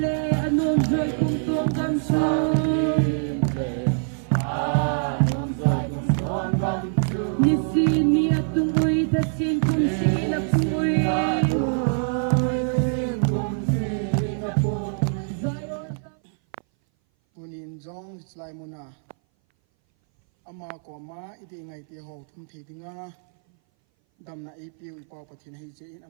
le anom joy kum tong gam su ni si ni atung ui ta sin kum si na pui Punin jong slai muna ama ko ma iti ngai ti ho thum thi dinga dam na ipiu ipaw pathin hi che in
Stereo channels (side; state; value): left; silent; 59 dB below the other